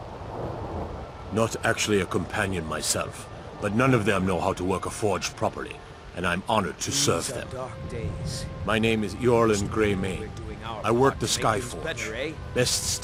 Not actually a companion myself, but none of them know how to work a forge properly, and I'm honored to serve them. My name is Eorlin Greymane. I work the Skyforge. Best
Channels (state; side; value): identical; both; correlation 1.00